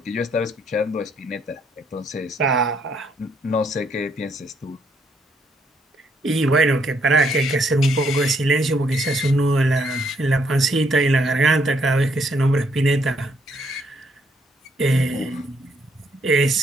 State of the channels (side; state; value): both; normal; correlation 0.72